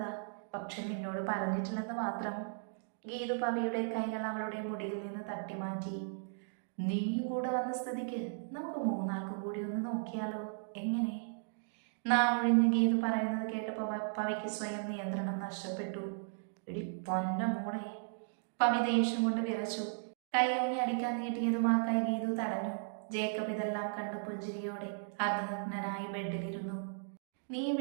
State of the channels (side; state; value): left; silent; digital silence